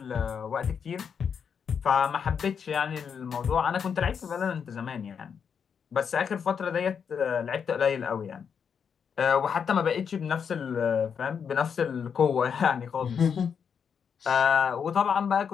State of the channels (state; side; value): quieter; right; 6.9 dB